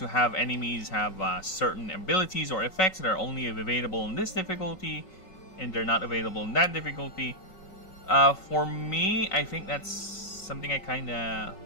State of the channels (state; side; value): late; right; 5.4 ms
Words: have enemies have certain abilities or effects that are only available in this difficulty, and they're not available in that difficulty. For me, I think that's something I kind of